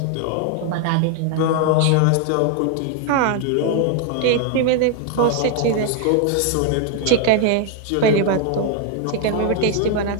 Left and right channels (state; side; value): different; both; correlation 0.00